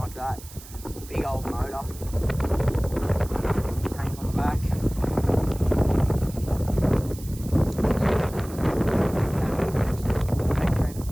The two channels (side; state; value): right; noise; hiss, 18 dB below the sound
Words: that. Big old motor. This tank on the back. Tank